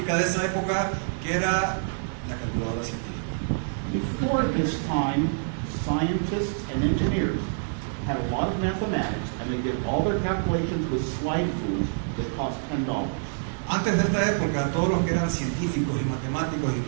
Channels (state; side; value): silent; left; 60 dB below the other